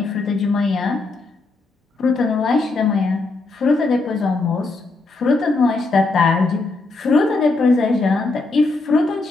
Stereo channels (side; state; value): right; quieter; 3.5 dB